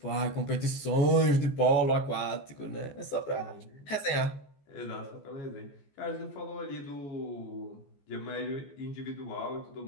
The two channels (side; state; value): right; late; 14 ms